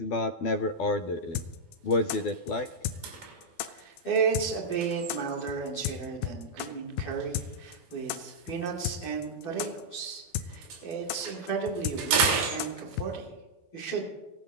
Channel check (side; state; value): right; late; 12 ms